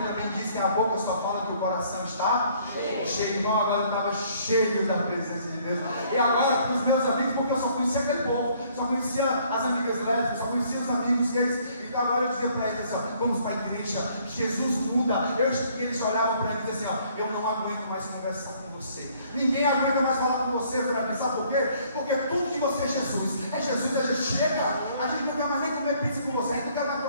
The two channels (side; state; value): both; inverted; correlation -0.62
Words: também diz que a boca só fala que o coração está cheio. Então agora eu estava cheio da presença de Deus, e agora para os meus amigos, porque eu só conhecia aquele povo, só conhecia as amigas lésbicas, só conhecia os amigos deles. Então agora eu dizia para eles assim, ó, vamos para a igreja, Jesus muda. Eles olhavam para mim e diziam assim, ó, eu não aguento mais conversar com você, ninguém aguenta mais falar com você, Fran. Sabe por quê? Porque tudo de você é Jesus, a gente chega, a gente não quer mais nem comer pizza com você, a gente não quer mais